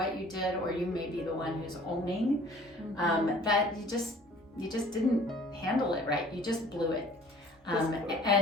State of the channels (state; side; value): normal; both; correlation 0.51